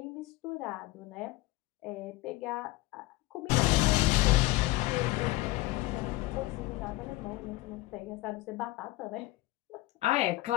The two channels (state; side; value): quieter; right; 19.6 dB